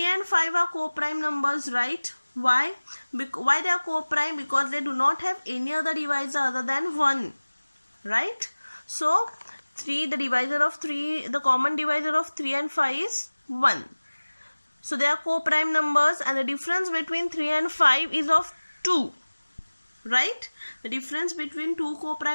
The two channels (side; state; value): both; inverted; correlation -1.00